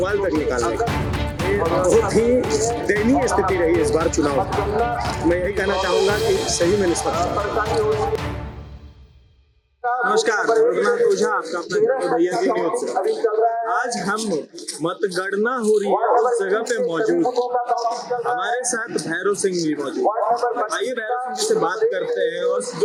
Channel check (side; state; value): both; identical; correlation 1.00